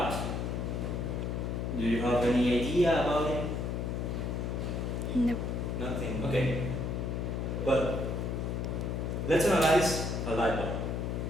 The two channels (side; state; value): left; noise; hum, 1 dB below the sound